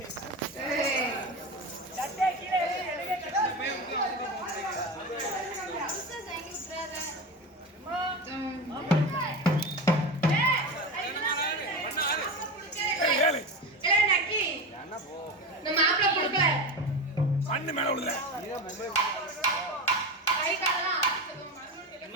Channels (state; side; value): normal; both; correlation 0.22